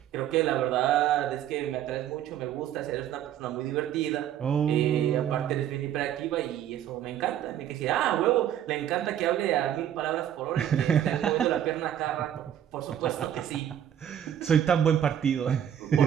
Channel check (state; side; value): quieter; left; 10.4 dB